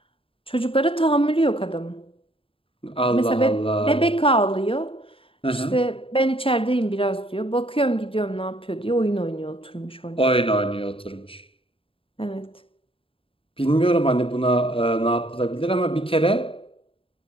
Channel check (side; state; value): right; late; 0.26 ms